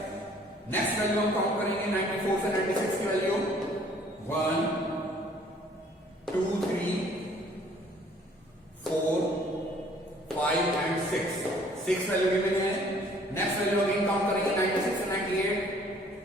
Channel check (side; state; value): both; normal; correlation 0.58